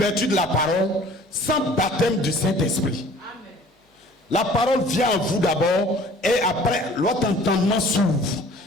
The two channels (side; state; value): both; normal; correlation 0.50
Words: de la parole, sans baptême du Saint-Esprit. La parole vient à vous d'abord et après votre entendement s'ouvre.